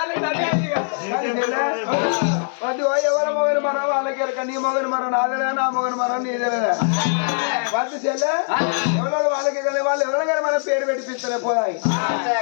అది ఎవరి మొగని మనం వాళ్ళకి ఎరక నీ మొగని మనం నాదేలే నా మొగని మనం నీదేలేదా వాళ్ళు చెల్లె ఎవరు వాళ్ళకి వాళ్ళు ఎవరైనా కానీ మన పేరు పెట్టిపిస్తలే పోదాయి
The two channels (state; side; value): silent; right; digital silence